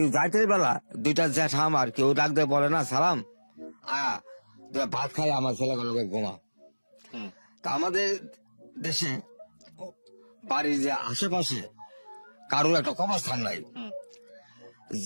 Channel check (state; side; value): inverted; both; correlation -1.00